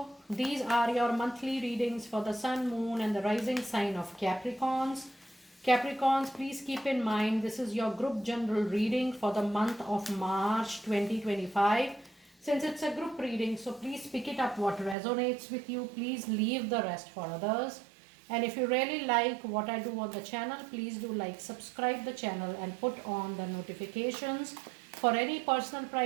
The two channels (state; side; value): drops out; left; at 15.0 s